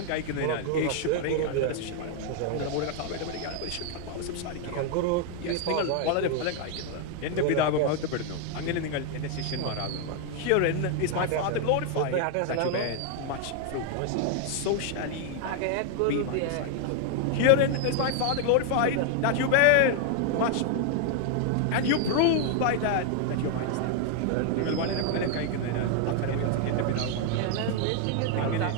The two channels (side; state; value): both; different; correlation 0.00